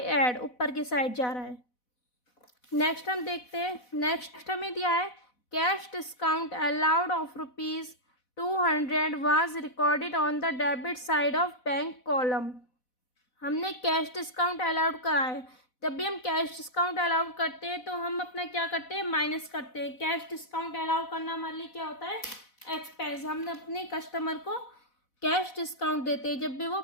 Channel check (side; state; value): right; late; 4.1 ms